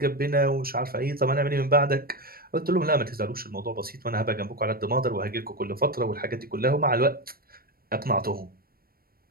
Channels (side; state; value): left; late; 0.43 ms